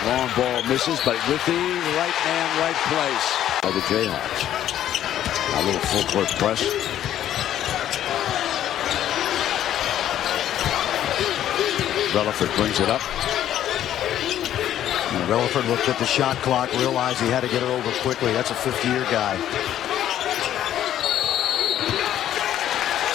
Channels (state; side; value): quieter; right; 11.5 dB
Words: long ball misses, but with the right man, right place by the Jayhawks. A little full court press. Relaford brings it up. And Relaford looked at the shot clock, realized he had to get it over quickly. That's a 50-year guy.